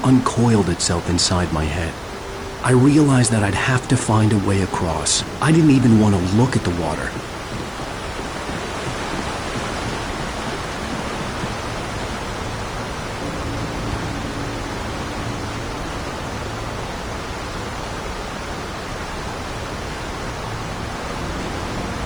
uncoiled itself inside my head. I realized that I'd have to find a way across. I didn't even want to look at the water.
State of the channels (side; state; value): right; noise; hiss, 28 dB below the sound